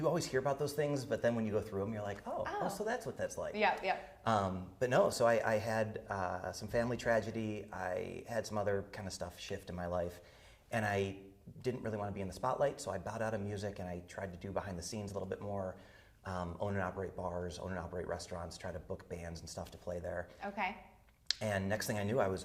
always hear about those things, but then when you go through them, you're like, oh, so that's what that's like. Yeah. But no, so I had some family tragedy. I had some other kind of stuff shift in my life, and I didn't really want to be in the spotlight, so I bowed out of music and I tried to do behind the scenes a little bit more, own and operate bars, own and operate restaurants, try to book bands and stuff to play there. Okay. And next thing I knew, I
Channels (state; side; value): identical; both; correlation 1.00